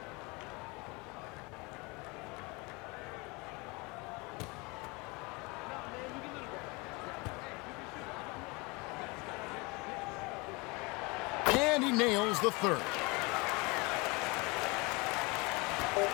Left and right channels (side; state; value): right; quieter; 26.8 dB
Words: And he nails the third.